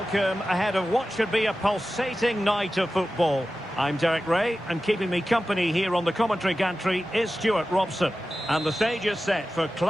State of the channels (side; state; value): both; normal; correlation 0.94